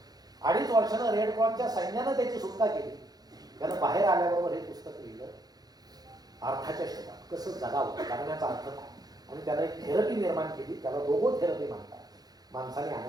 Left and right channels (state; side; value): late; left; 0.19 ms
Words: 2.5 वर्षानं रेड क्रॉसच्या सैन्यानं त्याची सुटका केली. त्यानं बाहेर आल्याबरोबर हे पुस्तक लिहिलं, अर्थाच्या शोधात कसं जगावं, जगण्याचा अर्थ काय. आणि त्याला एक थेरपी निर्माण केली, त्याला रोबो थेरपी म्हणतात. माणसाने